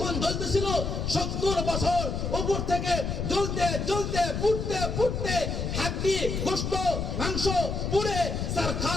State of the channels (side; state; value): left; noise; rumble, 2 dB below the sound